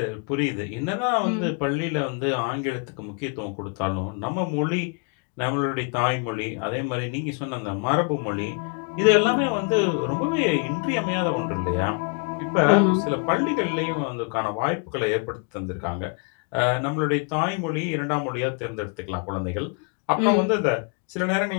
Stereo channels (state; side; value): quieter; right; 37.0 dB